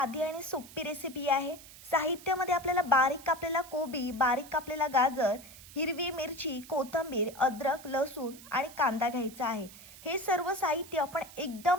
आणि सोपी रेसिपी आहे. साहित्यामध्ये आपल्याला बारीक कापलेला कोबी, बारीक कापलेला गाजर, हिरवी मिरची, कोथिंबीर, अद्रक, लसूण आणि कांदा घ्यायचा आहे. हे सर्व साहित्य आपण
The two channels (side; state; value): right; noise; hiss, 18 dB below the sound